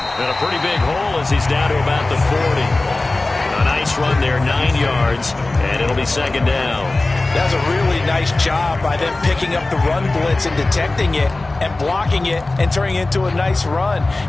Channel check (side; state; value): right; quieter; 3.1 dB